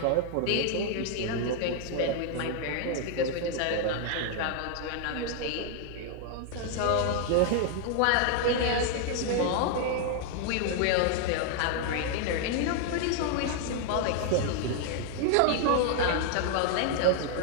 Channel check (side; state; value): both; different; correlation 0.00